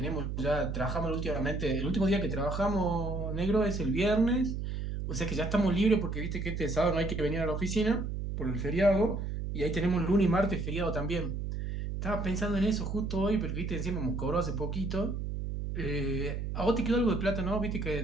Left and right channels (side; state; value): right; noise; hum, 3 dB below the sound